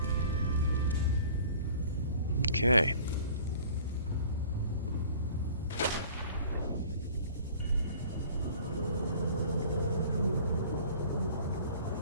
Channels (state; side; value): inverted; both; correlation -0.48